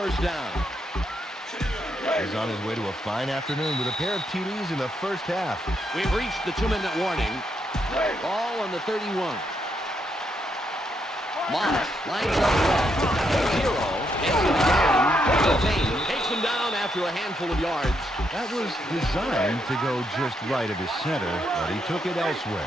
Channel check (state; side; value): normal; both; correlation 0.78